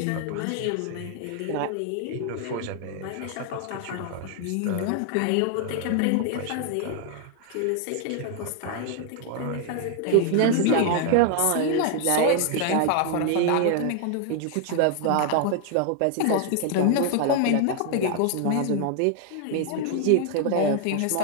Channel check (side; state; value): both; different; correlation 0.00